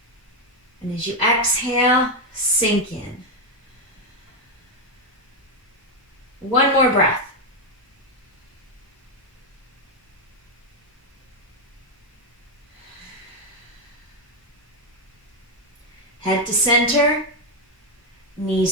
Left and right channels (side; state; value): both; normal; correlation 0.05